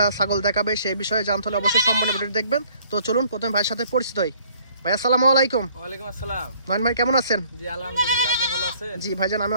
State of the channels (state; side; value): inverted; both; correlation -0.59